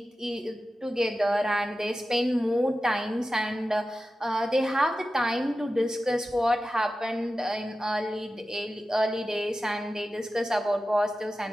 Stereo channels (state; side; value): normal; both; correlation 0.93